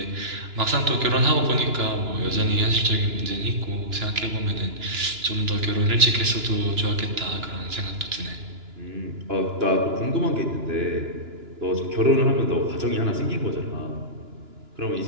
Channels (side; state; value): left; late; 2.9 ms